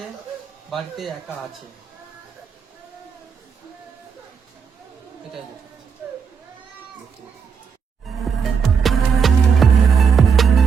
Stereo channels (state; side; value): quieter; left; 6.2 dB